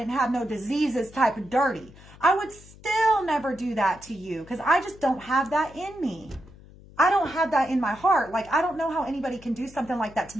have no diseases type of dirty. I would still never do that to you because I just don't have that in me. I don't have that in my heart. Like, I don't know how anybody can do something like that to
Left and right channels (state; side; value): noise; left; hum, 21 dB below the sound